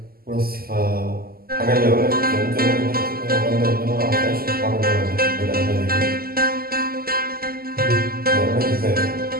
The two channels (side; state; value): left; late; 0.43 ms